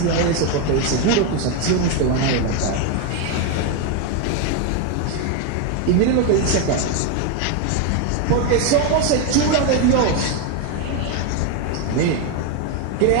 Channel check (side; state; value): both; different; correlation 0.02